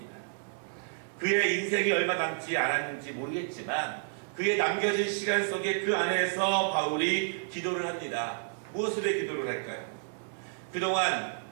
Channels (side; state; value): left; silent; 56 dB below the other